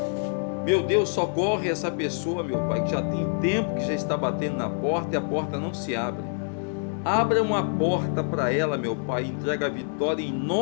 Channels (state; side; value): silent; right; 61 dB below the other